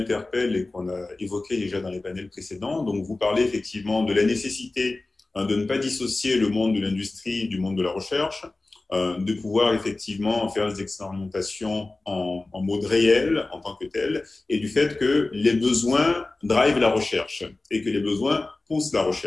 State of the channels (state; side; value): quieter; right; 3.2 dB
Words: et qu'on a évoqué déjà dans les panels précédents. Donc, vous parlez effectivement de la nécessité de ne pas dissocier le monde de l'industrie du monde de la recherche, de pouvoir effectivement faire des expérimentations en mode réel en tant que tel, et du fait que les besoins drivent la recherche et que les besoins poussent la